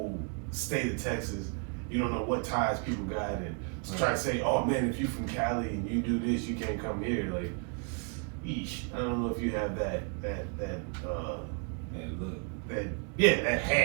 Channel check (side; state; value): left; quieter; 39.9 dB